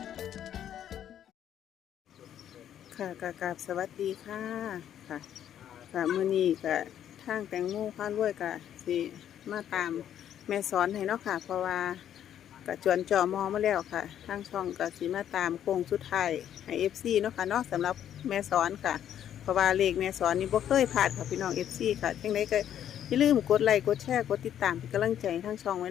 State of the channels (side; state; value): right; quieter; 10.2 dB